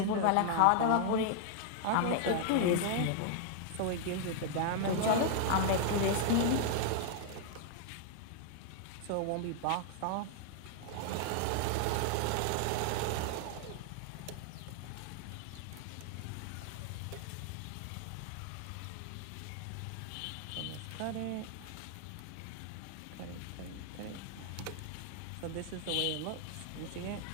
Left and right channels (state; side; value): different; both; correlation 0.00